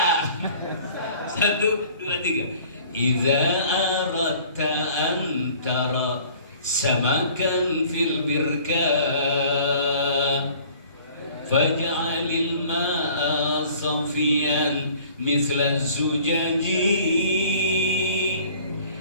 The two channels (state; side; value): inverted; both; correlation -0.50